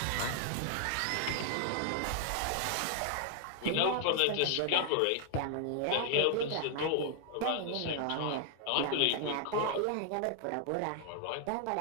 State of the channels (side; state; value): both; different; correlation 0.00